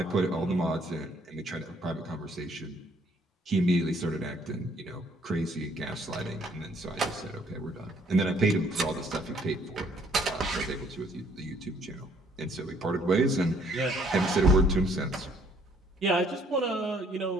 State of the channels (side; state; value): both; normal; correlation 0.63